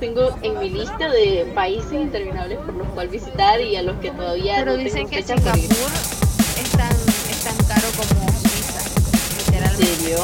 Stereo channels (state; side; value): identical; both; correlation 1.00